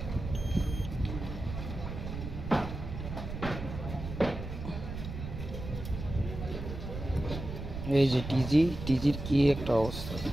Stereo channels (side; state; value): right; noise; rumble, 7 dB below the sound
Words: এই যে টিজির কি একটা অবস্থা